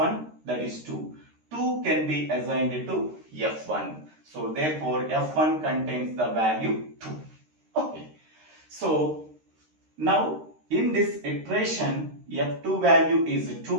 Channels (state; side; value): late; left; 13 ms